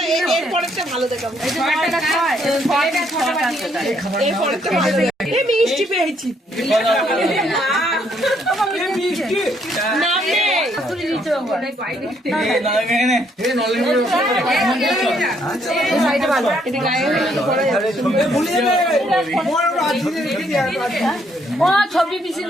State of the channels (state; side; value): normal; both; correlation 0.70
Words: মিষ্টি পেয়েছি ছবি পিছিয়ে